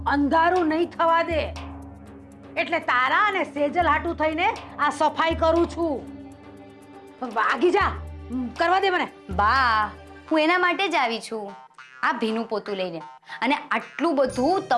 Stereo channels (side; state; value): both; identical; correlation 1.00